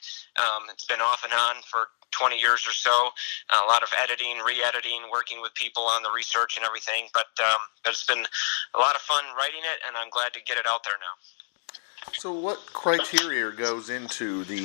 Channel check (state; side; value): silent; right; digital silence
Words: It's been off and on for 20 years or so, a lot of editing, re-editing, working with people on the research and everything, but it's been a lot of fun writing it, and I'm glad to get it out there now. So what criteria goes into